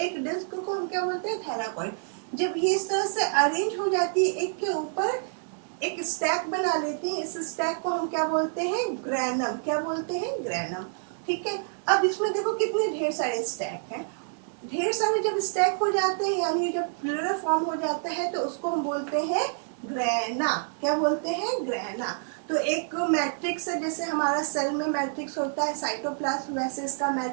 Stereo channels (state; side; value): silent; left; digital silence